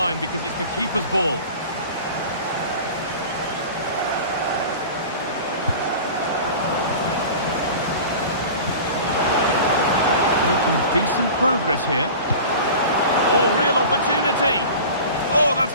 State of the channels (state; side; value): inverted; both; correlation -0.37